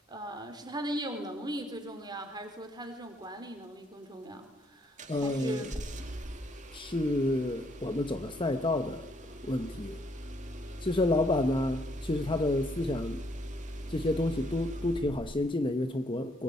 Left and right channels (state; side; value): normal; both; correlation 0.70